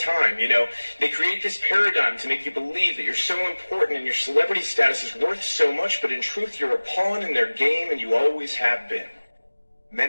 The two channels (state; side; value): inverted; both; correlation -1.00